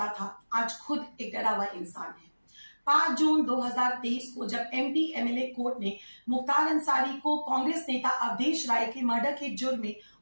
था, आज खुद एक डरा हुआ इंसान है। 5 जून 2023 को जब एमपी एमएलए कोर्ट ने मुख्तार अंसारी को कांग्रेस नेता अवधेश राय के मर्डर के जुर्म में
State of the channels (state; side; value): inverted; both; correlation -1.00